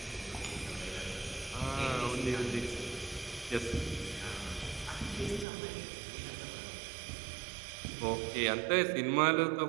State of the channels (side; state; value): left; drops out; at 5.5 s